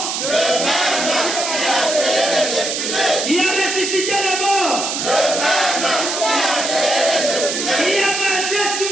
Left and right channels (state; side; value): noise; right; hiss, 2 dB below the sound